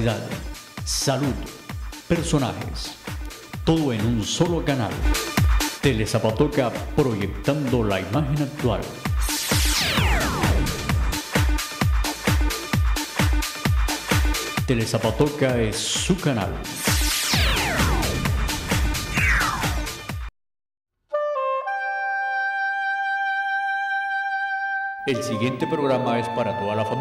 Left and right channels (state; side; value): identical; both; correlation 1.00